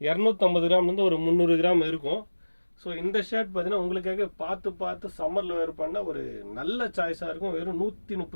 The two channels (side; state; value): both; inverted; correlation -1.00